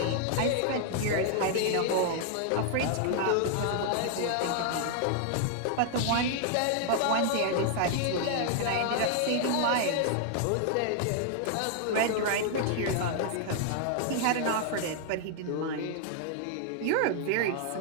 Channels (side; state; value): both; different; correlation 0.00